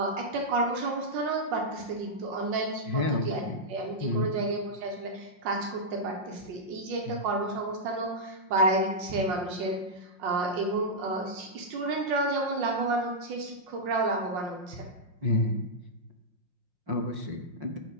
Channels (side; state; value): left; late; 5.6 ms